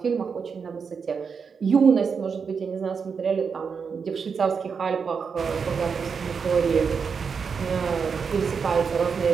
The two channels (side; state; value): left; quieter; 5.9 dB